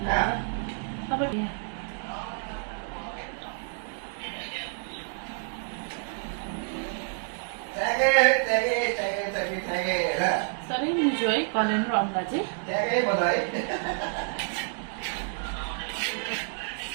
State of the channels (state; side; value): silent; left; 59 dB below the other